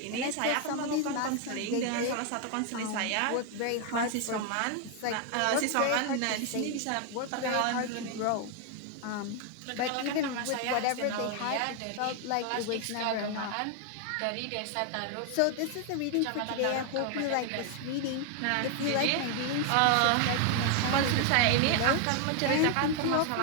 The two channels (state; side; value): different; both; correlation 0.00